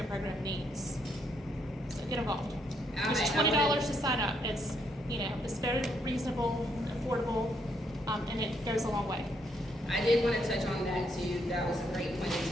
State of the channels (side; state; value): both; normal; correlation 0.74